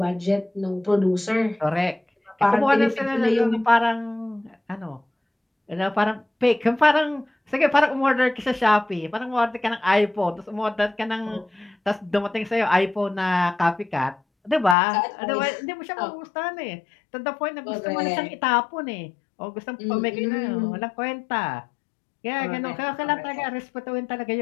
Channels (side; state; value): right; drops out; at 14.8 s